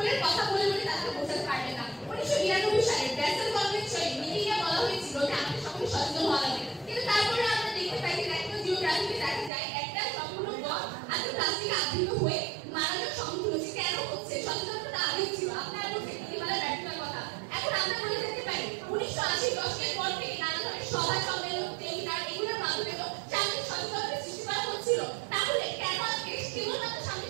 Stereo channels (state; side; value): drops out; left; at 9.5 s